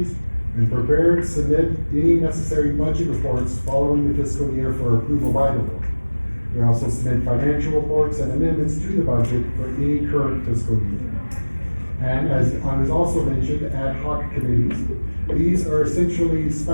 and prepare and submit any necessary budget reports following the fiscal year for approval by the board. We also submit financial reports and amendments to the budget for any current fiscal year. And as I was also mentioned, ad hoc committees. These are essentially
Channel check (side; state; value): both; inverted; correlation -1.00